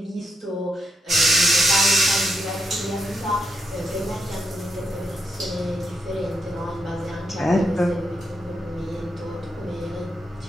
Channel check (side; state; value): both; normal; correlation 0.82